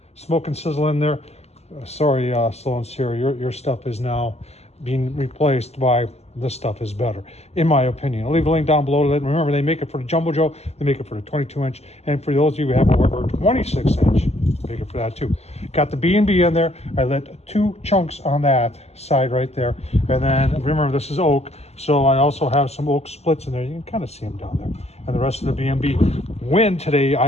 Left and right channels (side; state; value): right; late; 0.31 ms